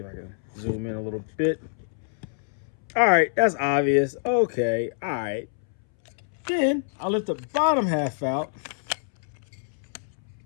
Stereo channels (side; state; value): right; silent; 60 dB below the other